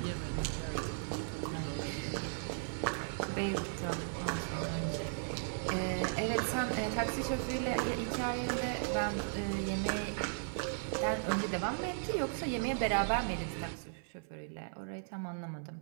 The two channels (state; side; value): silent; left; 53 dB below the other